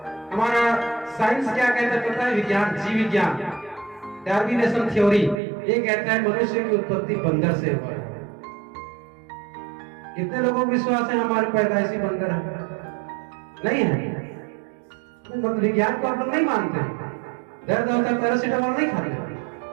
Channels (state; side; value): drops out; left; at 5.4 s